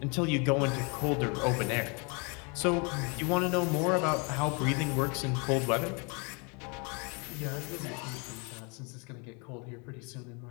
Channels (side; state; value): right; quieter; 32.6 dB